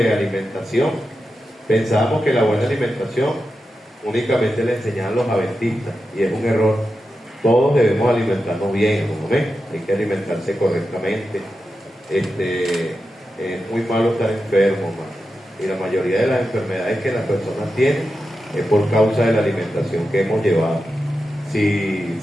alimentación, pensábamos que la buena alimentación únicamente le enseñaban los adventistas, y es un error. Todos debemos alimentarnos bien, ¿no ven? Hay que alimentarse correctamente. Es muy malo estar enfermo, man. Y la mayoría de las enfermedades que las personas tienen es por causa de la alimentación que hemos llevado.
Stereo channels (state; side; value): normal; both; correlation 0.90